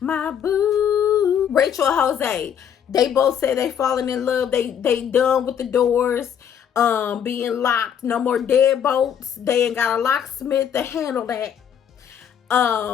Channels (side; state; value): right; quieter; 8.6 dB